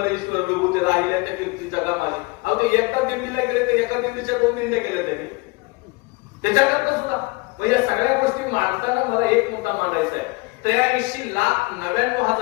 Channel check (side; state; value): right; quieter; 25.9 dB